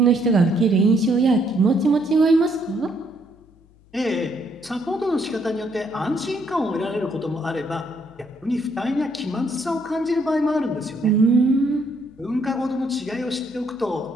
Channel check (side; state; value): left; noise; hum, 29 dB below the sound